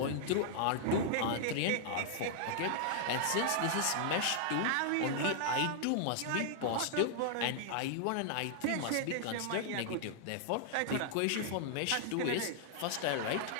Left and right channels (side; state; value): both; different; correlation -0.01